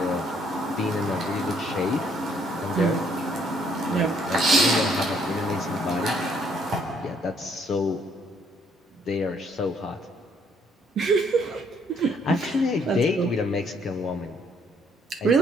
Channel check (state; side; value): normal; both; correlation 0.66